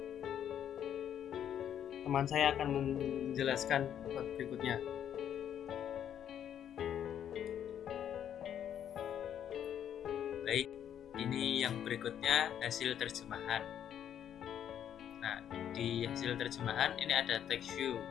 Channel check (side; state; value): right; quieter; 9.7 dB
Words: teman saya akan menjelaskan berikutnya. Baik, ini yang berikutnya hasil terjemahan. Nah, di hasil terjemahan ini ada text view.